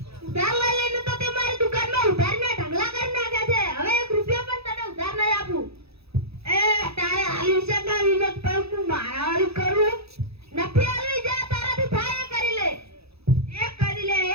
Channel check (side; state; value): left; late; 0.78 ms